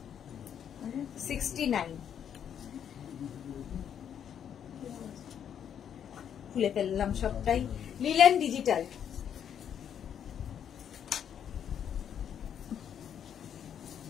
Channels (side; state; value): right; quieter; 8.8 dB